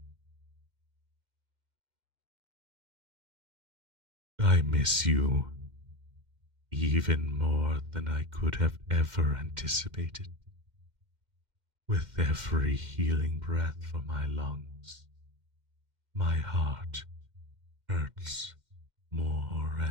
I miss you even more than I could have ever anticipated. With every healing breath from my lungs, my heart hurts more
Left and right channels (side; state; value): left; late; 2.1 ms